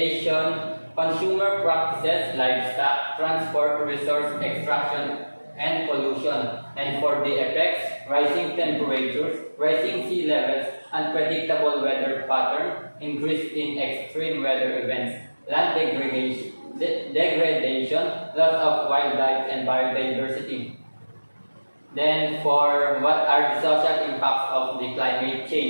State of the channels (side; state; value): both; inverted; correlation -1.00